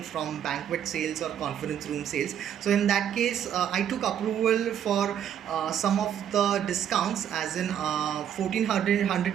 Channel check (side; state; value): left; quieter; 9.5 dB